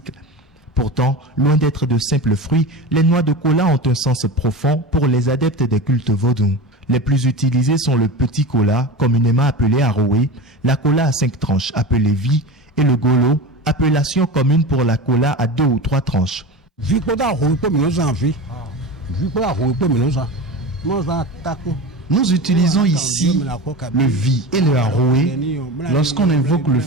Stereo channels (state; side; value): normal; both; correlation 0.28